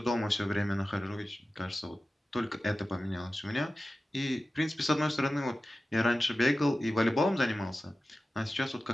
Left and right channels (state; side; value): normal; both; correlation 0.95